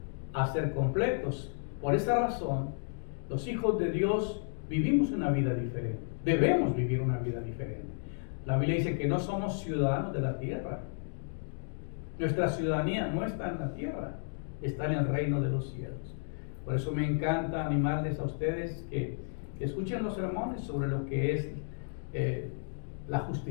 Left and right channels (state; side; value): silent; right; digital silence